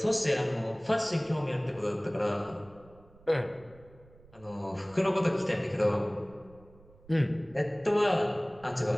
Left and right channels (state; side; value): noise; right; rumble, 25 dB below the sound